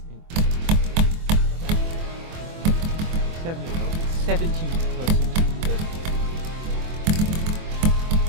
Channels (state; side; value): late; left; 24 ms